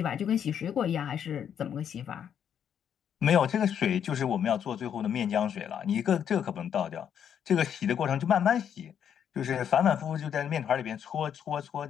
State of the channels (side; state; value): right; quieter; 8.7 dB